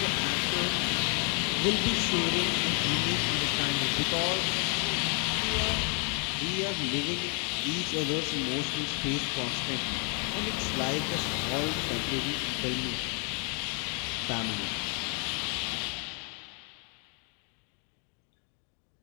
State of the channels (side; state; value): right; quieter; 39.1 dB